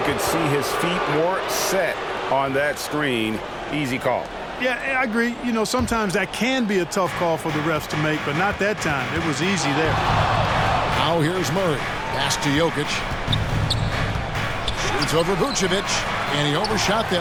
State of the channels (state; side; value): identical; both; correlation 1.00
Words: could see his feet more set on that screen. Easy call. Yeah, I agree. You know, sometimes that can be a tough call for the refs to make, but not that time. It was easy there. Now here's Murray. Pass to Jokic. Shoots over Vucevic. And he overshot